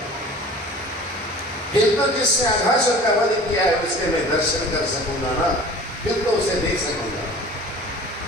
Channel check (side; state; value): both; normal; correlation 0.43